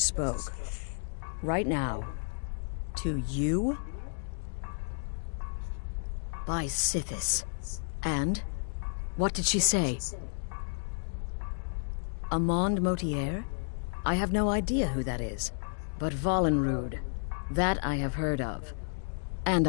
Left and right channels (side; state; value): right; silent; digital silence